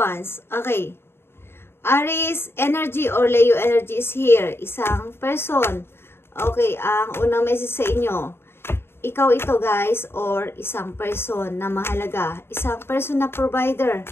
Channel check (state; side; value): late; right; 0.11 ms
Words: Okay. Aries energy or Leo energy is here. Isang person. Okay, ang unang message sa inyo. Ikaw ito guys or isang person na mahalaga. Isang person na provider.